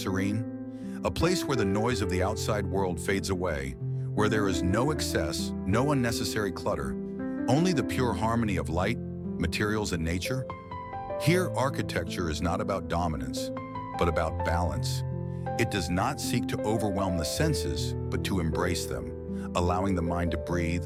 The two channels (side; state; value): both; identical; correlation 1.00